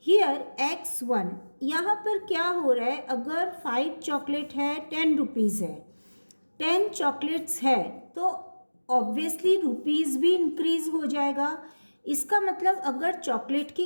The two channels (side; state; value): both; inverted; correlation -1.00